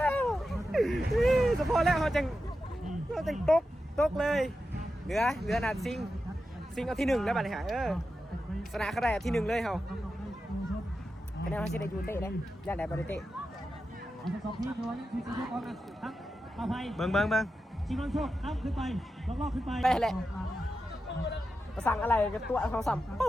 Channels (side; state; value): both; normal; correlation 0.90